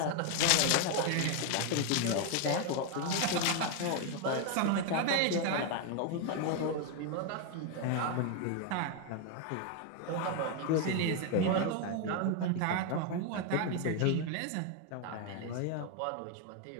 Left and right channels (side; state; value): both; different; correlation 0.01